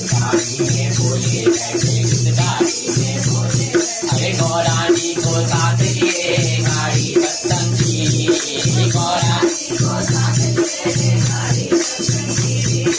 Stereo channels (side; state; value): both; identical; correlation 1.00